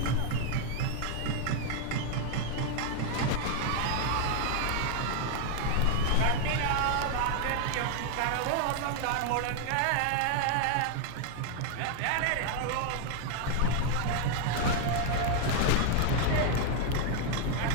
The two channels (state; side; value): different; both; correlation 0.00